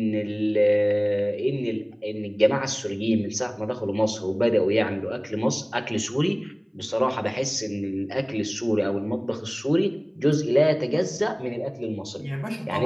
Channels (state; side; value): identical; both; correlation 1.00